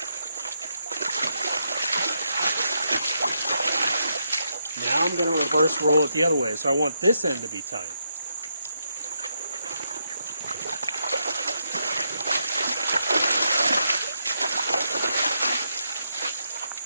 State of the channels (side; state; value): both; inverted; correlation -0.81